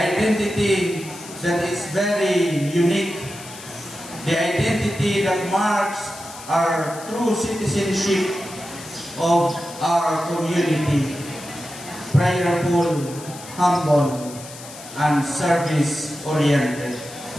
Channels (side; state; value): left; noise; hiss, 15 dB below the sound